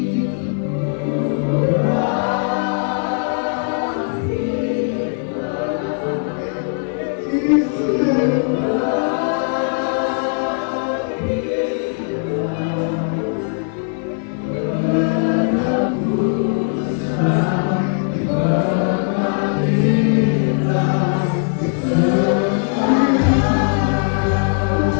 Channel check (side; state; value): right; silent; 60 dB below the other